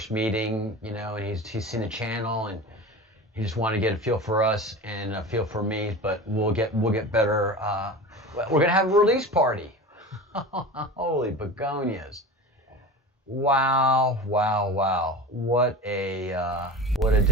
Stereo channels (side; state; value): both; normal; correlation 0.31